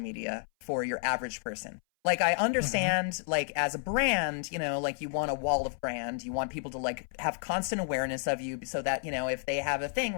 for your average person. Like, I understand, like, as a brand, you know, like, you want a wall of brand. You want people to, like, have constant awareness of you so that, you know, if they have a thing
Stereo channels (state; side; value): silent; right; 57 dB below the other